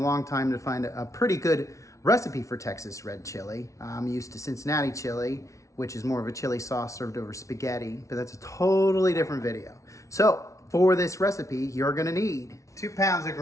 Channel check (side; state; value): right; late; 0.15 ms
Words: time to find a pretty good recipe for Texas red chili. I'm used to Cincinnati chili, which is more of a chili sauce served over spaghetti, but that's a totally different video. So for this recipe, you're going to need 2 pounds of